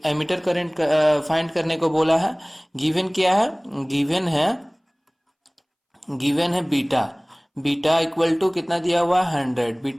emitter current find करने को बोला है। गिवन क्या है? गिवन है बीटा। बीटा इक्वल टू कितना दिया हुआ है? 100।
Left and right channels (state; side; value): identical; both; correlation 1.00